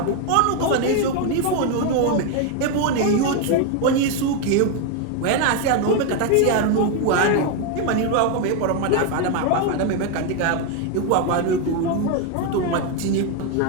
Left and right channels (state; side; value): different; both; correlation 0.01